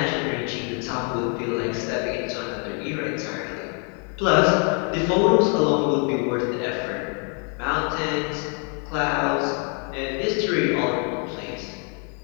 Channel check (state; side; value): quieter; right; 39.4 dB